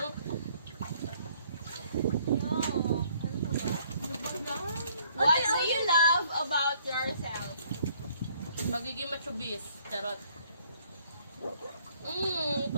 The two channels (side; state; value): both; inverted; correlation -0.63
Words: What do you love about yourself? Magiging machubis. Charot.